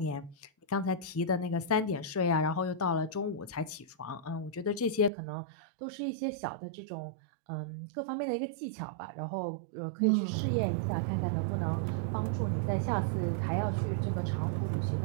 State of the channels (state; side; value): drops out; left; at 5.1 s